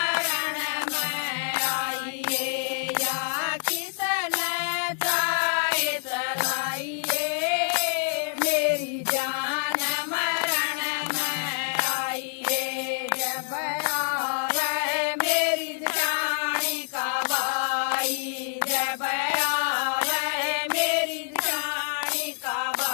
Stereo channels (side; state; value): right; silent; digital silence